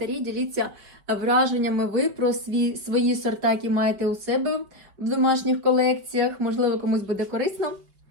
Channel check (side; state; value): left; late; 5.2 ms